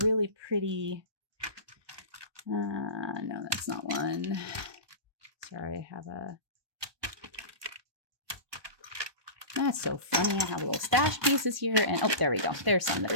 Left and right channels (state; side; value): late; left; 1.2 ms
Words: pretty, no, that's not one. Sorry, I have a, that's so funny. I have little stash pieces here, and oh, there we go. There's some that